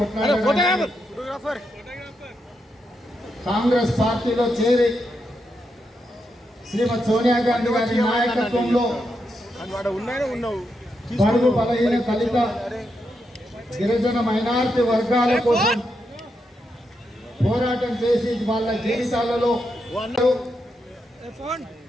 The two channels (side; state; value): both; normal; correlation 0.83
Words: కాంగ్రెస్ పార్టీలో చేరి శ్రీమతి సోనియా గాంధీ గారి నాయకత్వంలో బడుగు బలహీన దళిత గిరిజన మైనారిటీ వర్గాల కోసం పోరాటం చేసి వాళ్ళ జీవితాలలో